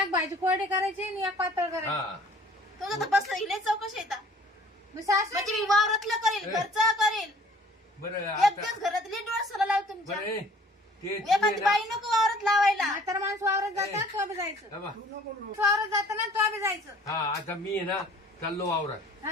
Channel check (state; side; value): normal; both; correlation 0.52